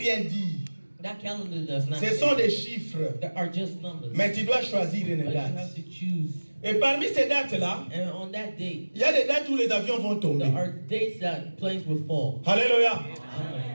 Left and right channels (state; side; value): inverted; both; correlation -1.00